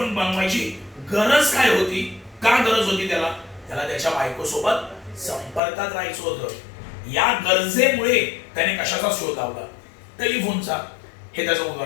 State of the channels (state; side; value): drops out; right; at 5.6 s